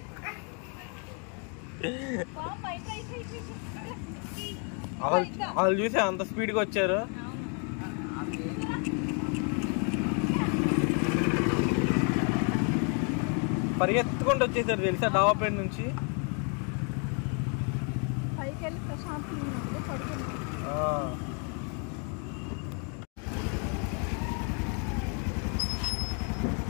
వాళ్ళు చూసే అంత స్పీడ్గా వచ్చారు. పరిగెత్తుకుంటూ వచ్చేసారు తెలుసా డాబా పైన నుంచి.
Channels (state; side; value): quieter; right; 38.3 dB